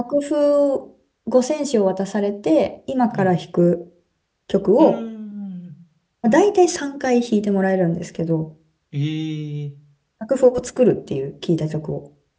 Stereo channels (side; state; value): both; identical; correlation 1.00